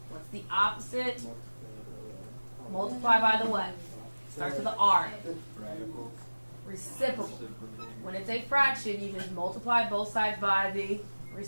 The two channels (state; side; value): inverted; both; correlation -1.00